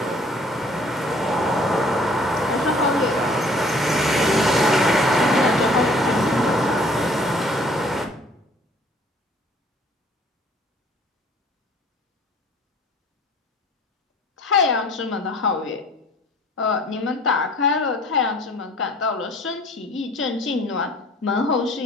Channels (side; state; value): both; normal; correlation 0.54